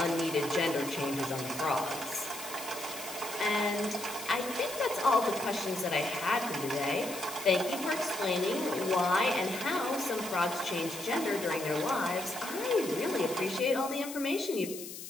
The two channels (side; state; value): left; noise; hiss, 11 dB below the sound